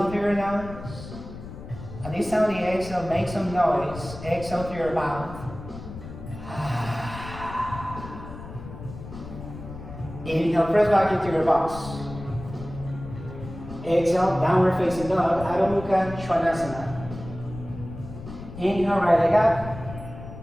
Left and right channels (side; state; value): left; noise; rumble, 12 dB below the sound